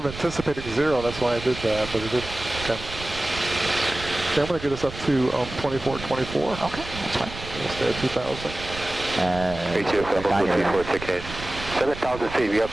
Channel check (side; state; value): right; noise; rumble, 12 dB below the sound